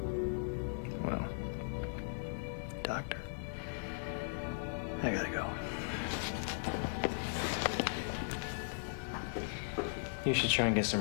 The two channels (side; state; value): right; silent; 52 dB below the other